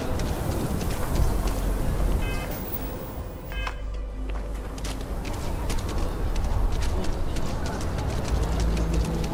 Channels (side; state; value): both; identical; correlation 1.00